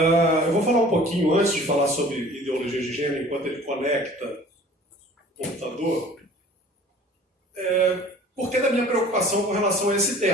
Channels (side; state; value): both; normal; correlation 0.48